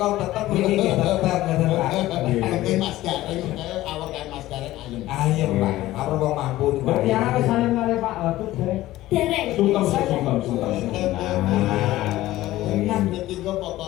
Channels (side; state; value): right; quieter; 16.0 dB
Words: tetep iki tetep ngoten Pak. Oke Mas Gareng, awak kan Mas Gareng ayem. Ayo Pak, apa wong mampu niku. Mbak ya wis saling kali Pak Watut dereng. Dereng. Sungkem. Enak iki kok